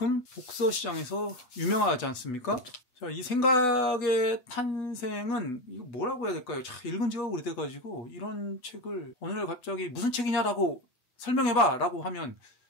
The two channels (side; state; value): right; late; 8.1 ms